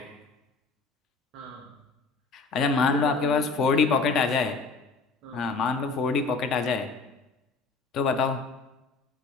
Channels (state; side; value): quieter; right; 4.2 dB